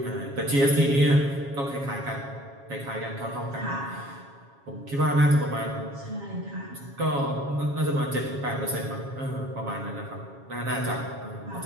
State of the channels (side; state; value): left; late; 7.3 ms